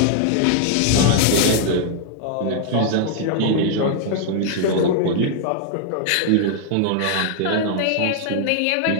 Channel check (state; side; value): different; both; correlation 0.00